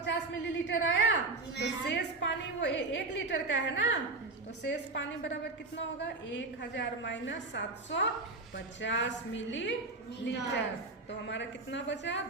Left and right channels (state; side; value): quieter; left; 3.4 dB